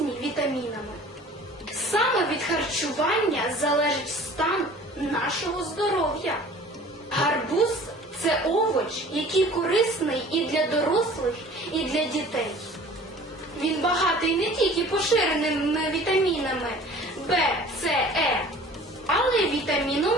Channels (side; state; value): both; normal; correlation 0.46